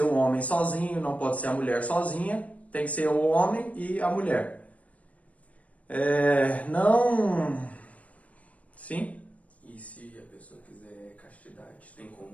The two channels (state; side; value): late; right; 0.067 ms